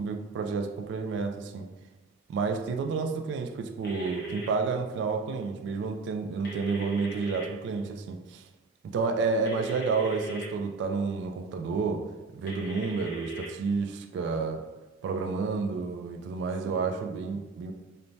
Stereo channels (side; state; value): left; quieter; 4.1 dB